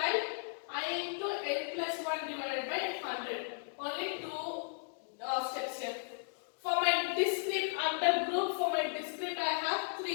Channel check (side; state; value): right; silent; digital silence